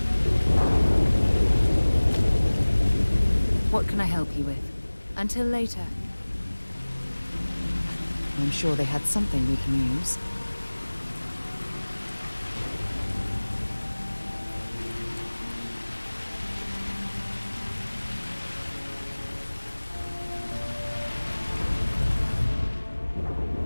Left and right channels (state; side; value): inverted; both; correlation -1.00